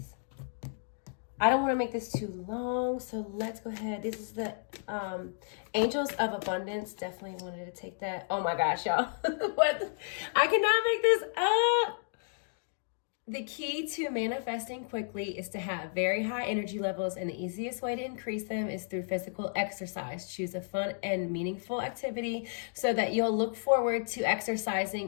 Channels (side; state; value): right; silent; digital silence